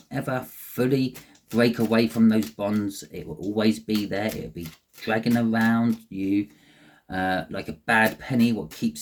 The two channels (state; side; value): identical; both; correlation 1.00